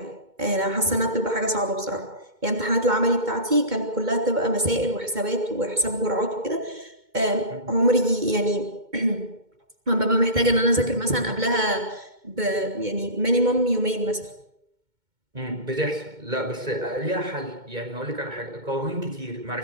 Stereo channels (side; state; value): left; late; 2.2 ms